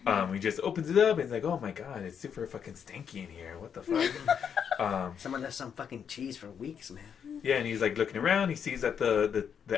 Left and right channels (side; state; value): right; quieter; 7.6 dB